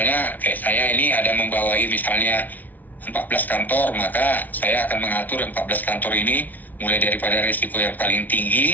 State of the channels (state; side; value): late; right; 0.079 ms